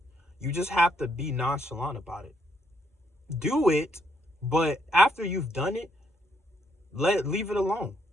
You just have to be nonchalant about it. Do it, but after you've done it, leave it alone.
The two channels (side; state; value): both; normal; correlation 0.74